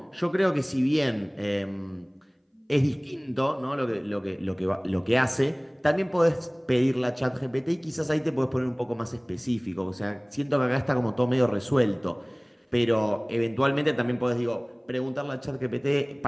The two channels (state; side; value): identical; both; correlation 1.00